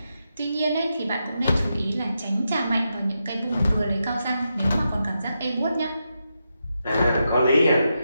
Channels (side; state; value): both; inverted; correlation -0.86